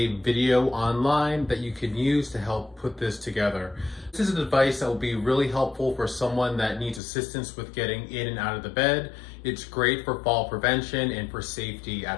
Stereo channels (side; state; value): right; drops out; at 7.0 s